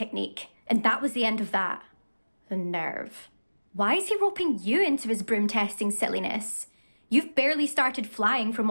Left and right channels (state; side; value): inverted; both; correlation -1.00